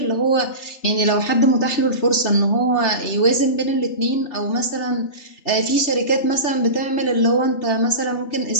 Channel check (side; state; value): right; late; 3.3 ms